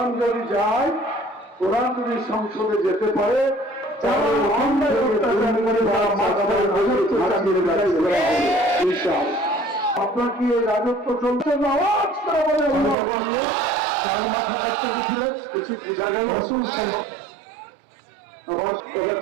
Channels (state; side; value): drops out; left; at 13.0 s